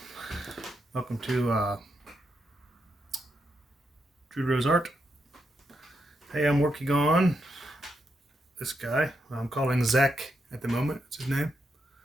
welcome to Drew Rose Art. Hey, I'm working on this guy. I'm calling Zach at the moment, that's his name.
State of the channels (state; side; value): normal; both; correlation 0.82